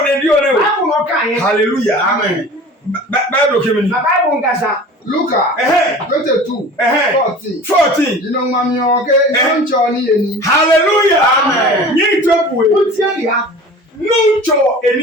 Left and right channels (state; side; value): normal; both; correlation 0.40